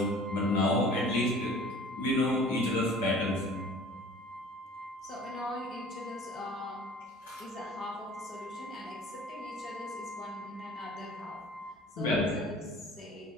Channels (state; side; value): normal; both; correlation 0.47